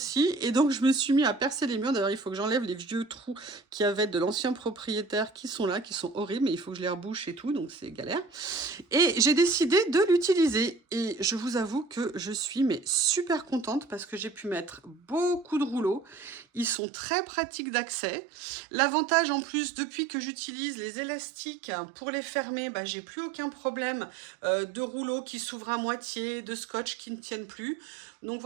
et donc je me suis mis à percer les murs. D'ailleurs, il faut que j'enlève les vieux trous qu'il y avait de l'ancien propriétaire qui sont là, qui sont horribles, mais il faut que je les rebouche et tout, donc c'est galère. Et j'ai décidé de l'utiliser et je vous avoue que je suis super contente parce que j'ai pu mettre beaucoup de rouleaux. Ils sont très pratiques d'accès. L'avantage en plus, depuis que j'utilise les élastiques pour les fermer, j'ai plus aucun problème de rouleaux qui s'ouvrent à moitié, de scotch qui ne tiennent plus. Donc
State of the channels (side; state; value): left; drops out; at 16.8 s